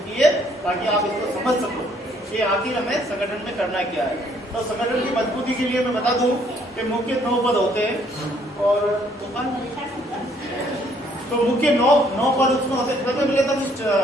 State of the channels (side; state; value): both; normal; correlation 0.65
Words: की है ताकि आप इसको समझ सको कि आखिर हमें संगठन में करना क्या है। तो संगठन की मजबूती के लिए मैं बता दूं कि मुख्य 9 पद होते हैं और तो मुख्य 9 पद उसमें होते हैं। मिले तो